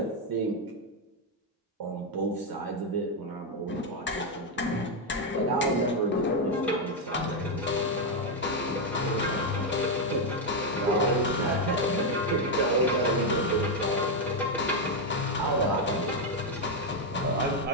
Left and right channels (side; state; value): both; normal; correlation 0.03